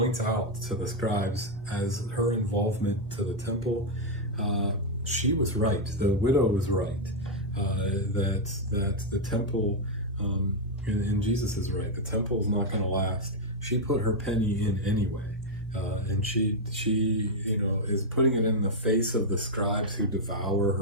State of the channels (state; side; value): normal; both; correlation -0.01